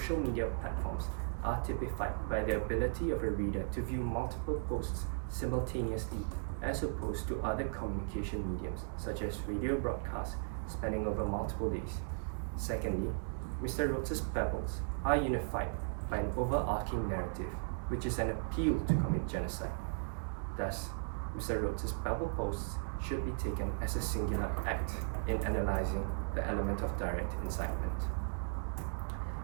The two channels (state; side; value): silent; left; digital silence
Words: media platforms are typified by the ability of a reader to view multiple posts simultaneously, as opposed to other communication mediums such as radio broadcasts spanning over multiple days. Secondly, Mr. Rhodes' babbles are unified by an overarching narrative, which is an appeal to commit genocide. Thus, Mr. Rhodes' babble posts should be taken as a singular act in analyzing the element of direct incitement.